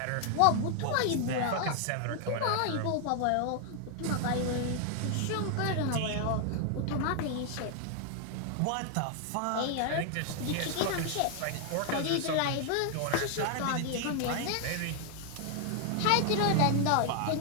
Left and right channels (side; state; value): both; different; correlation 0.00